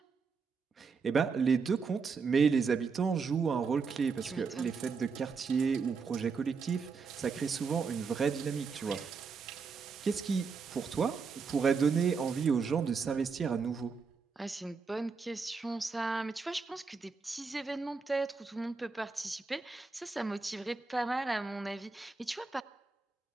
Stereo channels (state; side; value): quieter; left; 5.1 dB